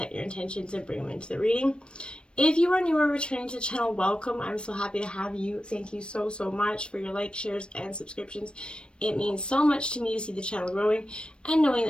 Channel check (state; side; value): late; right; 0.056 ms